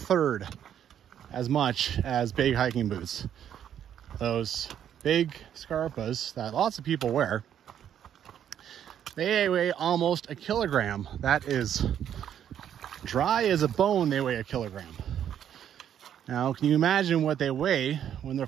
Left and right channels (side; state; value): left; quieter; 9.7 dB